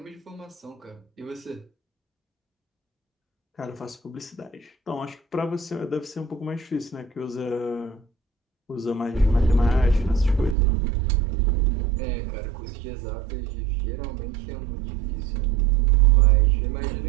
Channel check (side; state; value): left; drops out; at 10.6 s